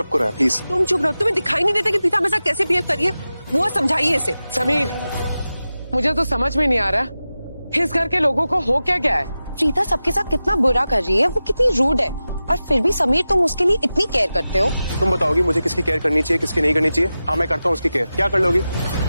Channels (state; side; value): inverted; both; correlation -0.94